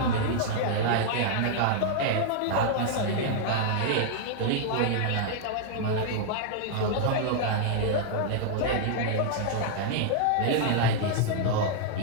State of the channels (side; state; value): both; different; correlation -0.01